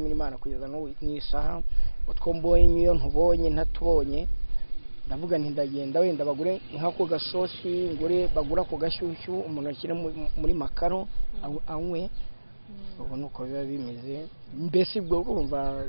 Imana kugeza n'isaha utwo mbonye iyo ntubonye ntatubonye ndavuga nti ndagenda wenda bagure nk'ako gasosi ngure bagura ako gashyushyu umuntu ashyira muri makaro anywe ubu nuko biba bimeze mbese ubwo urumva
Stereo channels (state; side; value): inverted; both; correlation -1.00